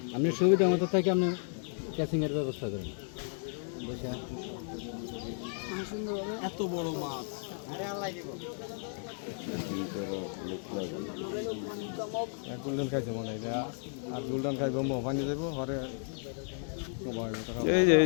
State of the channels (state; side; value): silent; right; 55 dB below the other